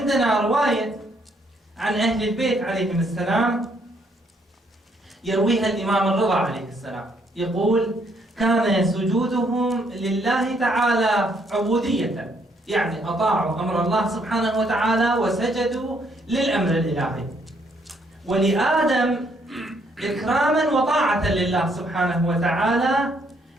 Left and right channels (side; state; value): both; normal; correlation 0.70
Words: رواية عن أهل البيت عليهم السلام يرويها الإمام الرضا عليه السلام، يقول: كان سجودهم لله تعالى عبودية، يعني أطاعوا أمر الله سبحانه وتعالى وسجدوا للأمر الإلهي، ولآدم إكراما وطاعة لله سبحانه وتعالى